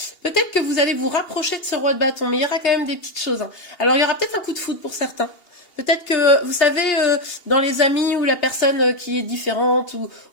Peut-être que vous allez vous rapprocher de ce roi de bâton, mais il y aura quand même des petites choses, hein. Alors il y aura peut-être un coup de foudre pour certains. Peut-être que, vous savez, dans les amis ou la personne qui est différente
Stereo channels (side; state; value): right; late; 2.8 ms